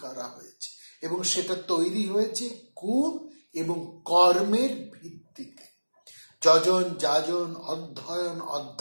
করা হয়েছে, এবং সেটা তৈরি হয়েছে গুণ এবং কর্মের ভিত্তিতে। যজন, যাজন, অধ্যয়ন,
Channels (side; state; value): both; inverted; correlation -1.00